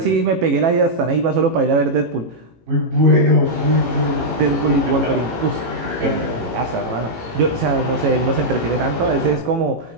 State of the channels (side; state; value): left; late; 18 ms